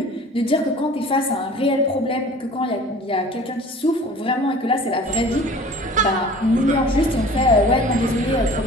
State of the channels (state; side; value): normal; both; correlation 0.44